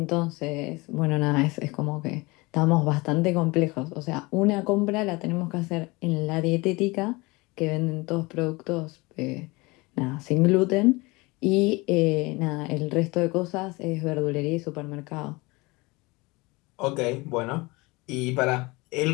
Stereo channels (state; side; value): quieter; right; 24.1 dB